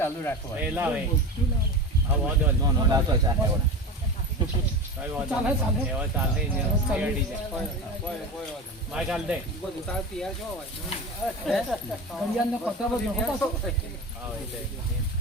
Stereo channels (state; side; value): normal; both; correlation 0.27